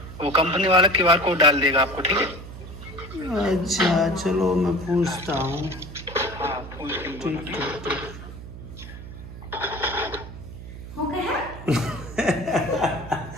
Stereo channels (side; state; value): right; noise; hum, 13 dB below the sound